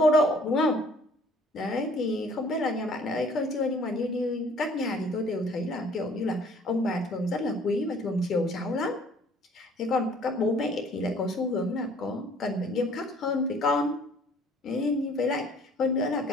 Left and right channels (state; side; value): normal; both; correlation 0.56